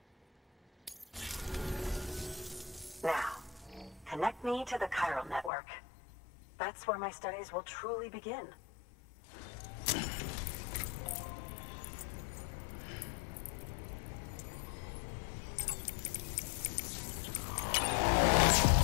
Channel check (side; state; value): right; drops out; at 5.5 s